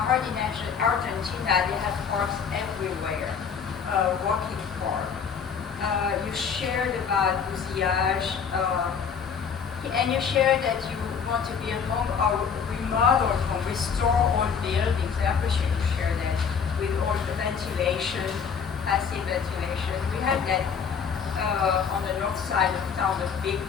they have parks everywhere, walking park. You shared about bousillage, and you shared that you want to build home or remodel home, restore old buildings. I appreciate you share that with all the ventilation, passive ventilation. We have that on the north side of town, the big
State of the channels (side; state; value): right; quieter; 6.6 dB